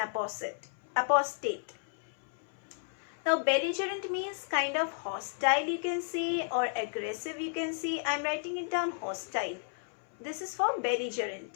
Now belligerent means kind of hostile, you can say, or aggressive, you can say. I'm writing it down, hostile. This is for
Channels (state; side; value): silent; right; 56 dB below the other